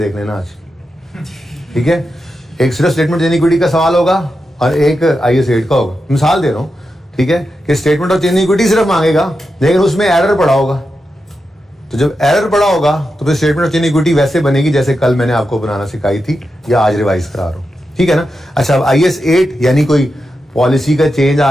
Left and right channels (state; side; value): normal; both; correlation 0.88